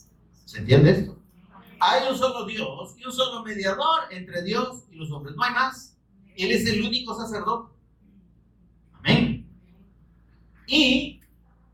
¿Se entiende esto? Hay un solo Dios y un solo mediador entre Dios y los hombres. No hay más. Él es el único sacerdote. Amén. Y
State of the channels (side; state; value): both; identical; correlation 1.00